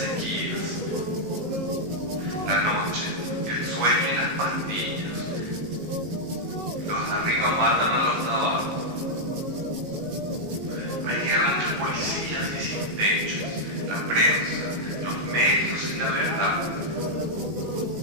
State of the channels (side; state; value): left; late; 19 ms